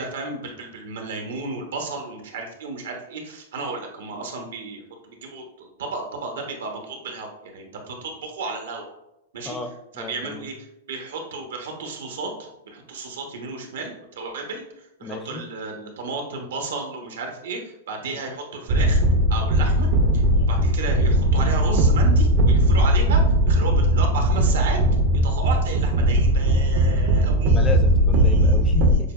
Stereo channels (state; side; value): normal; both; correlation 0.06